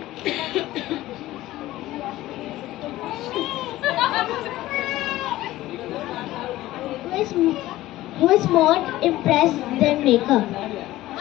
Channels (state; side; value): quieter; right; 16.1 dB